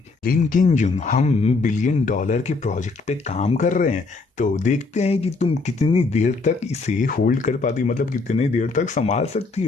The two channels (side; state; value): right; quieter; 3.9 dB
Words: लिन किंजुन हम $1 बिलियन के प्रोजेक्ट पे काम कर रहे हैं, तो देखते हैं कि तुम कितनी देर तक इसे होल्ड कर पाती, मतलब कितनी देर तक संभाल सकती